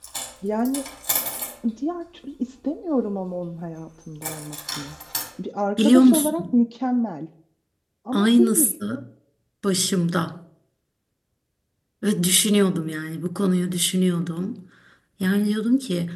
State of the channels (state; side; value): identical; both; correlation 1.00